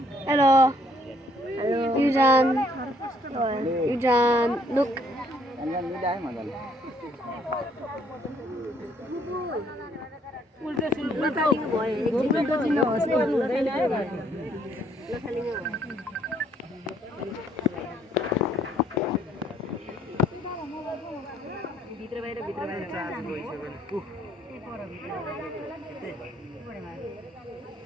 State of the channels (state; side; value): normal; both; correlation 0.65